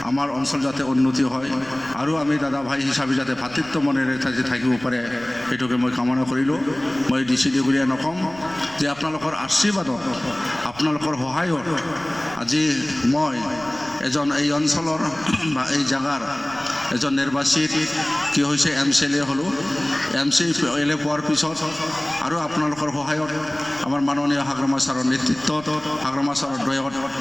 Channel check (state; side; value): noise; right; rumble, 21 dB below the sound